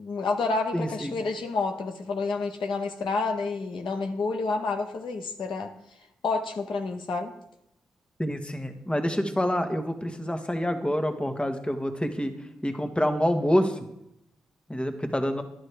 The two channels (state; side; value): normal; both; correlation 0.88